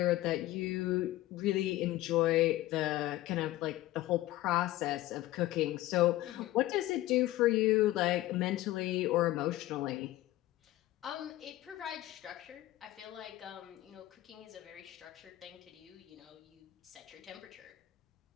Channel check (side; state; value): right; quieter; 16.2 dB